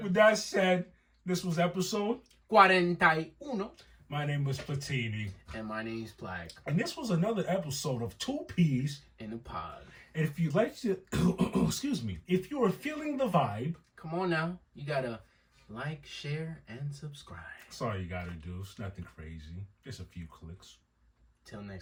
With that said, this was episode CUARENTA Y UNO. My name was Platini. And my name's Plague. And this was another episode of Two Peas in a Pod. And if you'd like to, excuse me, if you are feeling the vibe, come on now. You gotta like, share, and subscribe. That's all you gotta do. It's nothing crazy. Just a few clicks. Till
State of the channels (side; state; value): both; identical; correlation 1.00